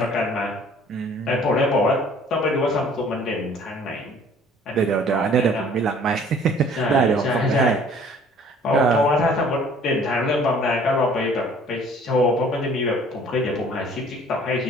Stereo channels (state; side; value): normal; both; correlation 0.54